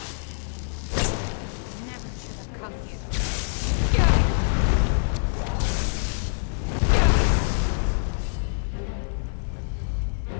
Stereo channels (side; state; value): right; silent; digital silence